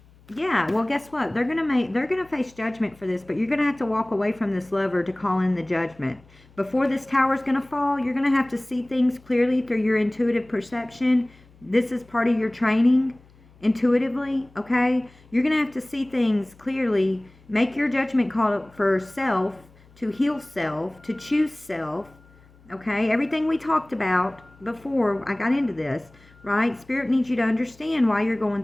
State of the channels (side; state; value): left; noise; hum, 27 dB below the sound